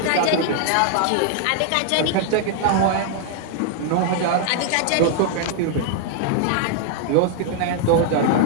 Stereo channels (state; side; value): different; both; correlation 0.00